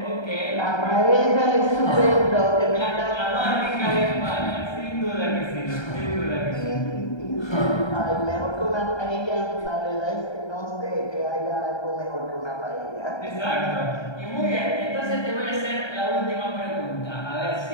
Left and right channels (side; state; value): right; late; 1.3 ms